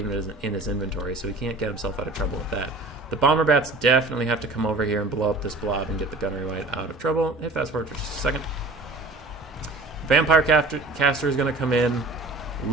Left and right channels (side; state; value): left; quieter; 3.0 dB